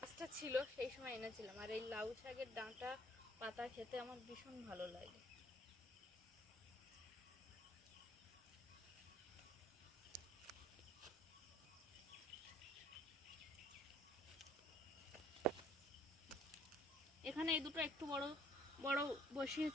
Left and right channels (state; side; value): normal; both; correlation 0.60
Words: গাছটা ছিল সেই সময় এনেছিলাম, আর এই লাউ শাকের ডাঁটা পাতা খেতে আমার ভীষণ ভালো লাগে। এখানে এই দুটো একটু বড় বড়